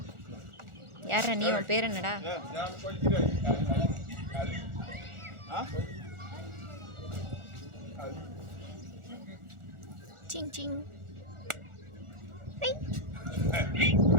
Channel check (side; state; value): left; late; 1.4 ms